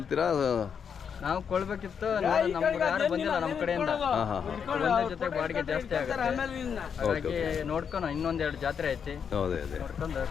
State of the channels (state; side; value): quieter; right; 7.1 dB